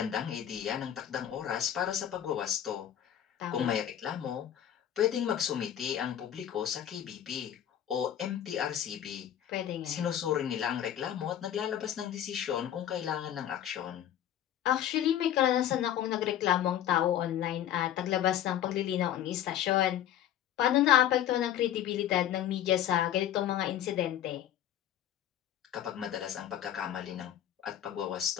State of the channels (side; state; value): right; quieter; 10.8 dB